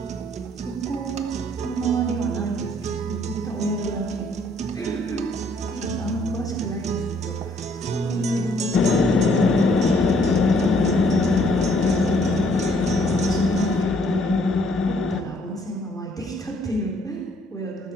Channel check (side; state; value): both; normal; correlation 0.64